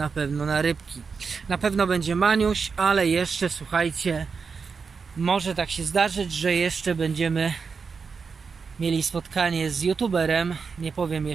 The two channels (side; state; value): left; quieter; 5.3 dB